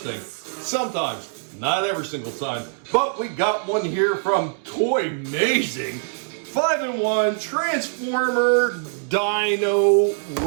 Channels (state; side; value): silent; left; 63 dB below the other